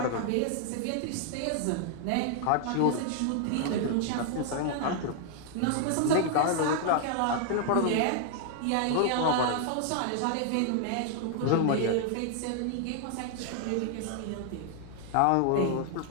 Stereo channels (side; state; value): both; different; correlation 0.00